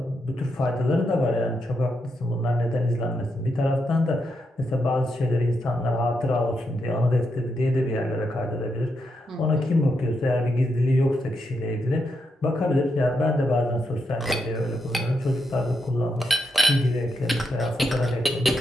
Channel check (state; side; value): normal; both; correlation 0.82